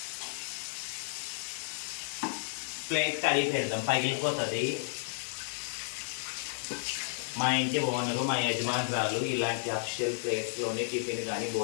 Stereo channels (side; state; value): right; silent; 56 dB below the other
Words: ప్లేట్ కడిగి పెడదాం, పగిలిపోతుంది. మా ఇంటి ఓనరు, మా యజమానురాలు ఇలాంటి అఫిషియల్ ప్లేట్స్లోనే టిఫిన్ కానీ